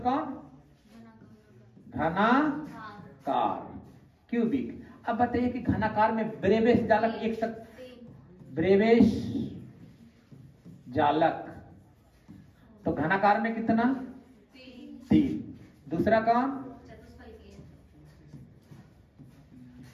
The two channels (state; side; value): identical; both; correlation 1.00